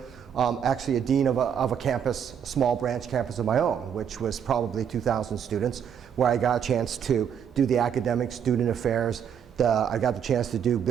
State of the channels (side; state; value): left; quieter; 8.1 dB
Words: actually a dean of a campus, a small branch campus of my own, which was probably 2,000 students, where I got a chance to do the academic, student affairs. I got the chance to do